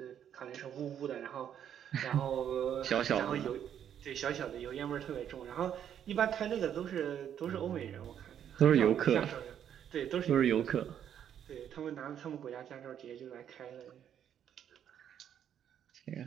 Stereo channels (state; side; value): quieter; left; 9.4 dB